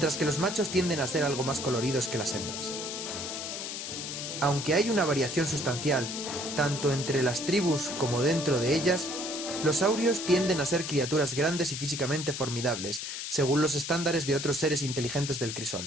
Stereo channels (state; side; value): noise; left; hiss, 6 dB below the sound